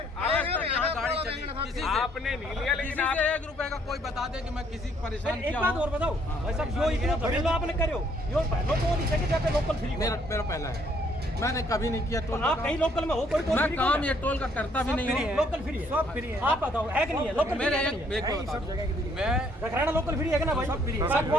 आज तक यहाँ गाड़ी चली किसी से आपने नहीं लिया, लेकिन किसी आप से 1 रुपए का कोई बता दे कि मैं किसी को परेशान एक किया बात हूँ। और बताओ भाई साहब जो इतना घरेलू आपने करो यो पहले तो नहीं सके जाते लोकल फ्री मेरा पहला है, मैंने कभी नहीं किया टोल आप का कहीं लोकल में हो कोई टोल मैं फ्री काम ये टोल का करता भी नहीं हूँ। लोकल फ्री है सब फ्री है आप बताओ है कि नहीं है लोकल मेरे फ्री है एक बता दूं, मैं रखराना लोकल फ्री है कि ना भाई सब फ्री है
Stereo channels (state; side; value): normal; both; correlation 0.66